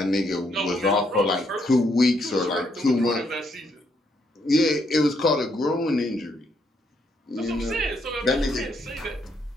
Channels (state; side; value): normal; both; correlation 0.74